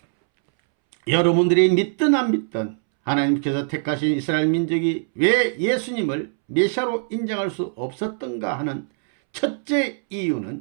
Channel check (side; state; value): left; silent; 64 dB below the other